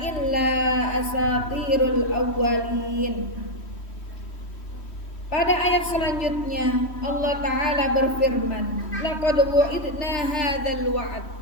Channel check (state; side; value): late; right; 3.1 ms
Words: illa asatirul awwalin. Pada ayat selanjutnya Allah Ta'ala berfirman, laqad wu'idna hadzal wa'd.